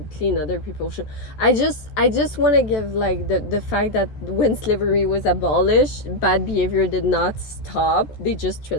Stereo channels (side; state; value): right; late; 14 ms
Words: clean other people's shoes. I just want to give, like, the fact that when slavery was abolished, bad behavior did not stop. They just